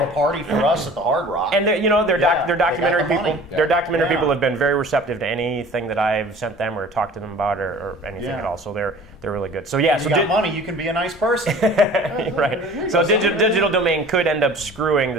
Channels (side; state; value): both; normal; correlation 0.45